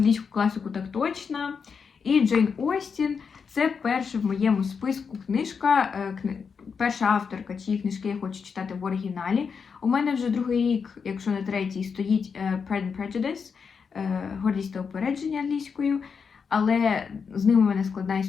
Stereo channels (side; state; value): right; quieter; 5.9 dB